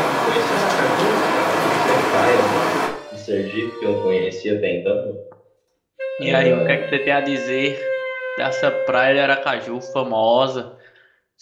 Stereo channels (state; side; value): identical; both; correlation 1.00